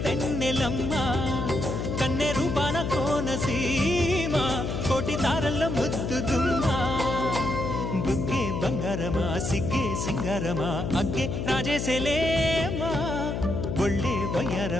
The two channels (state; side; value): noise; left; hum, 2 dB below the sound